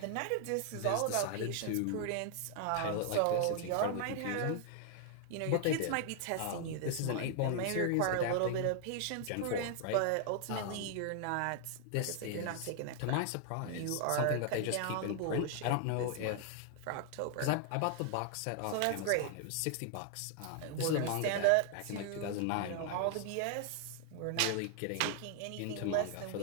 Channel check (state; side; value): different; both; correlation 0.00